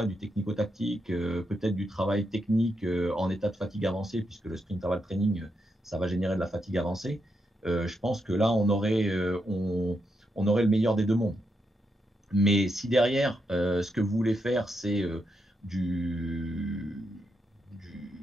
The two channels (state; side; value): normal; both; correlation 0.82